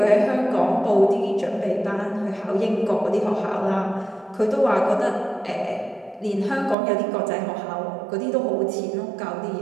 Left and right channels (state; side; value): drops out; left; at 6.8 s